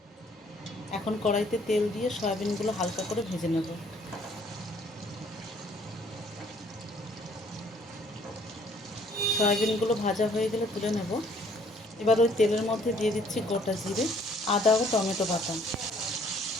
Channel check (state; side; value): normal; both; correlation 0.61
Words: এখন কড়াইতে তেল দিয়ে সয়াবিনগুলো হালকা করে ভেজে নেব। সয়াবিনগুলো ভাজা হয়ে গেলে তুলে নেব। এবার ওই তেলের মধ্যে দিয়ে দিচ্ছি গোটা জিরে, আদা ও টমেটো বাটা।